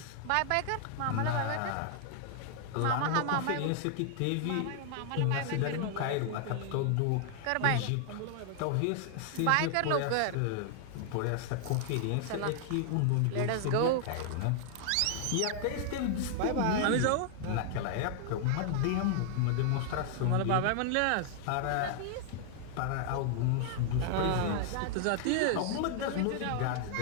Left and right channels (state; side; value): different; both; correlation 0.00